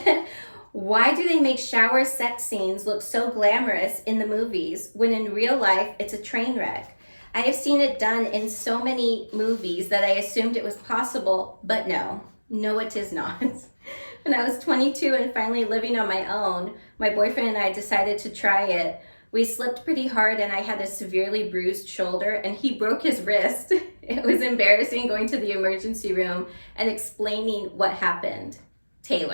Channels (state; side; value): inverted; both; correlation -1.00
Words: Why do they make shower sex scenes look so glamorous in the movies when in real life it's a train wreck? I have seen it done in so many movies that I assumed it was possible, but no, it is not. When I was 22 and finally living on my own, my boyfriend and I decided to try it. We slipped pretty hard and I had a severely bruised shoulder and he broke his wrist. It was embarrassing going to the emergency room and explaining what happened.